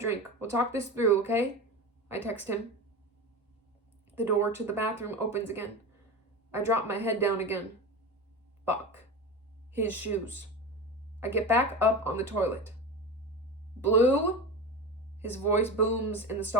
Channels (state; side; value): normal; both; correlation 0.25